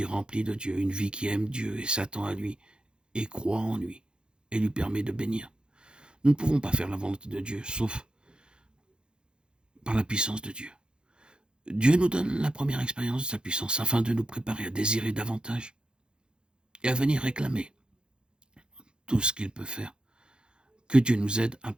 remplie de Dieu, une vie qui aime Dieu et s'attend à lui, et croit en lui, et lui permet de bénir. Nous ne pouvons pas faire la volonté de Dieu, sauf par la puissance de Dieu. Dieu nous donne la première expérience de sa puissance afin de nous préparer à désirer davantage et à venir réclamer tout ce qu'il peut faire. Que Dieu nous aide à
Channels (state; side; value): late; left; 0.049 ms